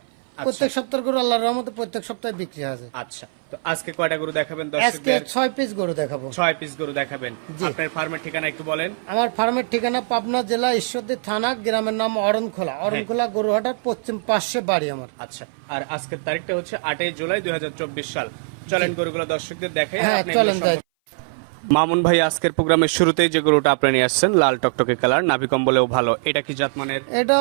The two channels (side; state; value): left; silent; 60 dB below the other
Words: আচ্ছা। প্রত্যেক সপ্তাহের গরু আল্লাহর রহমতে প্রত্যেক সপ্তাহে বিক্রি হয়। আচ্ছা, তো আজকে কয়টা গরু দেখাবেন আজকে দর্শকদের? 6 পিস গরু দেখাবো। 6 পিস গরু দেখাবেন। আপনার ফার্মের ঠিকানা একটু বলেন। আমার ফার্মের ঠিকানা পাবনা জেলা ঈশ্বরদী থানা, গ্রামের নাম অরণখোলা। অরণখোলা গরুহাটার পশ্চিম পাশে বাড়ি আমার। আচ্ছা, আর আজকের তারিখটা হচ্ছে 8 জুলাই 2024 সাল। চলেন গরুগুলো দর্শকদের দেখাই, আর হ্যাঁ, আপনি এগুলো চলেন সম্পর্কে। মামুন ভাই, আজকের প্রোগ্রামের শুরুতেই যে গরুটা আপনি নিয়ে আসছেন, লাল টকটকে কালার, নাভি কম্বলেও ভালো, এটা কি জাতমানের? এটা